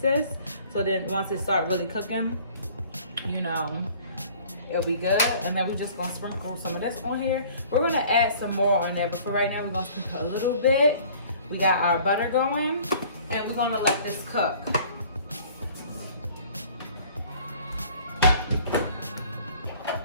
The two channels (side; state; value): both; inverted; correlation -0.51